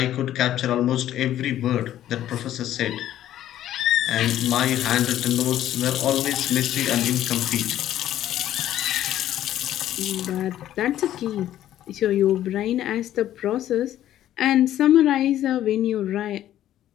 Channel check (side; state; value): right; quieter; 12.3 dB